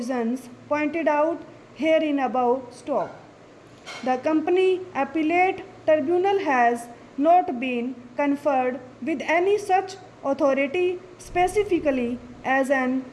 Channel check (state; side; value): identical; both; correlation 1.00